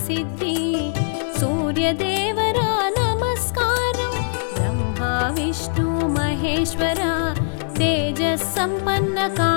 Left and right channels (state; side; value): silent; right; digital silence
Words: సూర్యదేవరా నమస్కారం బ్రహ్మ విష్ణు మహేశ్వర తేజస్ సంపన్న